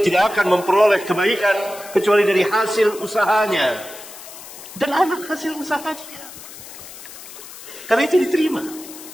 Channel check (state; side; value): noise; left; hiss, 15 dB below the sound